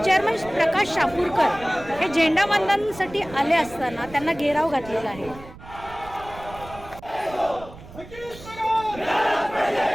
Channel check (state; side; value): noise; right; rumble, 17 dB below the sound